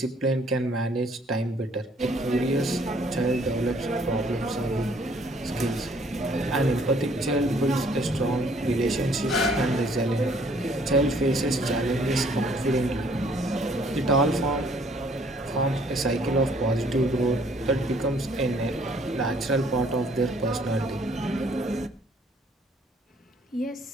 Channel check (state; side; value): normal; both; correlation 0.61